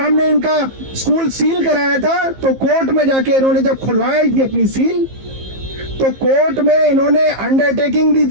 इनका स्कूल सील कराया था तो कोर्ट में जाके इन्होंने जब खुलवाई थी अपनी सील, तो कोर्ट में इन्होंने अंडरटेकिंग दी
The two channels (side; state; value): left; late; 15 ms